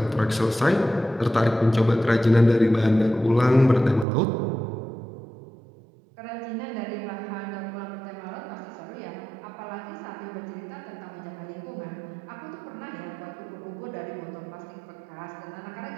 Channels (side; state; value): left; drops out; at 4.0 s